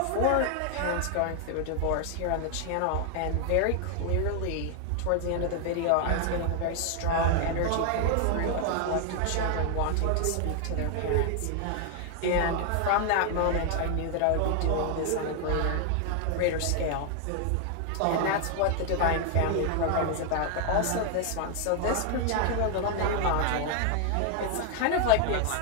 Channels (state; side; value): different; both; correlation 0.00